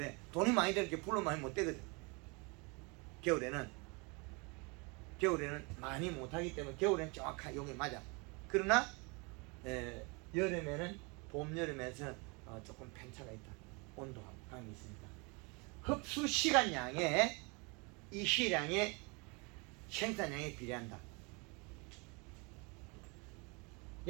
돈이 많이 들게 불로 많이 못 되거든. 겨울에는 많이 못하기 때문에 겨울에는 정확하게 여기 맞아. 그러나 여름에는 봄, 여름에서는 조금 편차가 있다. 온도감이 있으니까. 흡수 시간량에 이 시량에 생산량에 비례한다.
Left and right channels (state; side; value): quieter; left; 30.0 dB